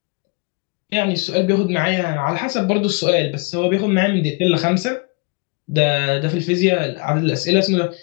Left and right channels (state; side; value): quieter; right; 31.1 dB